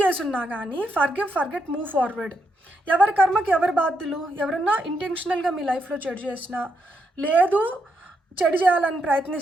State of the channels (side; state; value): both; normal; correlation 0.80